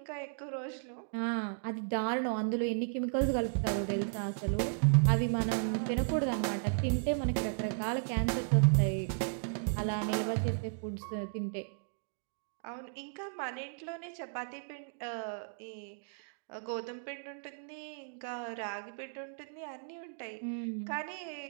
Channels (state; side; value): silent; left; digital silence